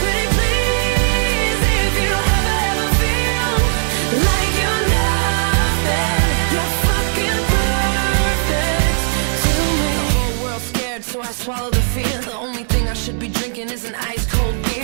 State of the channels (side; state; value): left; silent; 68 dB below the other